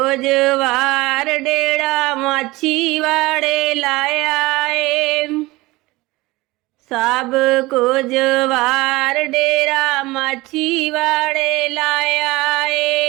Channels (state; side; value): quieter; left; 20.9 dB